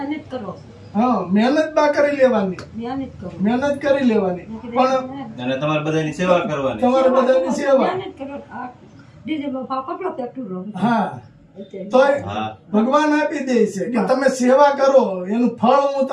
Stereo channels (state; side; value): identical; both; correlation 1.00